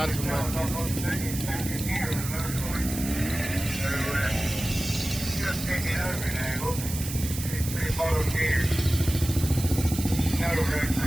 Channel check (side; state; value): right; noise; hiss, 8 dB below the sound